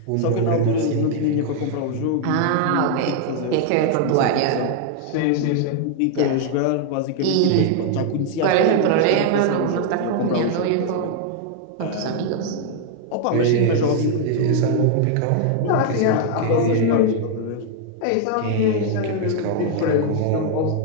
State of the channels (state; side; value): different; both; correlation 0.00